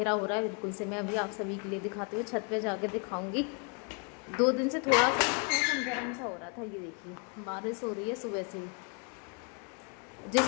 हो रहा है बिल्कुल से। मैं अभी आप सभी के लिए दिखाती हूँ, छत पे जाके दिखाऊंगी। 2 दिन से थोड़ा सा मौसम गर्म सा हो रहा था। ये देखिए बारिश हो रही है सुबह से ही।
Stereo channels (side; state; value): right; quieter; 34.9 dB